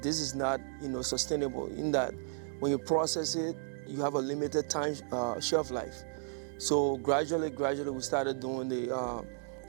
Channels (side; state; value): left; silent; digital silence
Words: is not sustainable. In that, when you process it, you have a limited time shelf life. So gradually, we started doing the